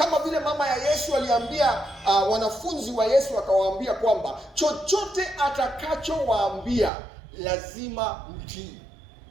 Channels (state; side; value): drops out; left; at 6.9 s